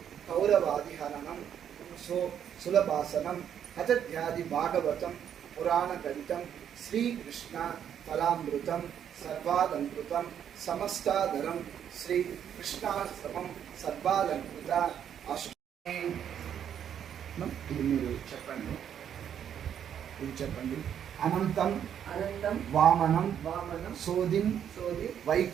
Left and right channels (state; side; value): quieter; left; 9.1 dB